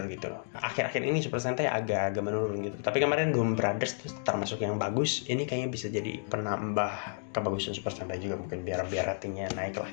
gitu loh. Akhir-akhir ini Super Sentai agak menurun gitu. Tapi kemarin Doom Brothers tuh termasuk yang bagus. Ini kayaknya bisa jadi penambah kebagusan Super Sentai juga, mungkin biar ratingnya naik lah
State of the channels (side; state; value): right; silent; digital silence